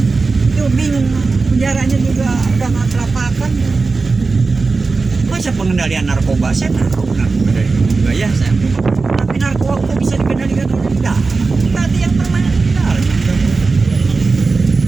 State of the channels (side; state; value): left; quieter; 4.1 dB